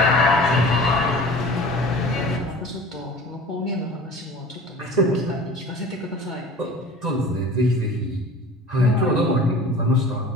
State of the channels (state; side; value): normal; both; correlation 0.41